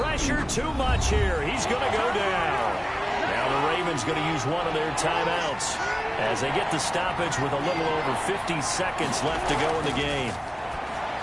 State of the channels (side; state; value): both; identical; correlation 1.00